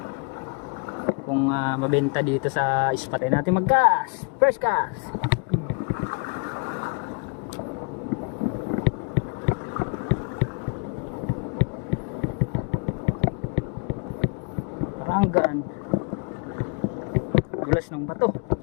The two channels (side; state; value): right; quieter; 35.7 dB